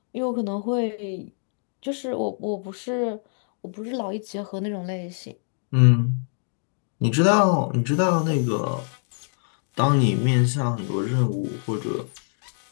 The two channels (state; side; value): silent; right; 62 dB below the other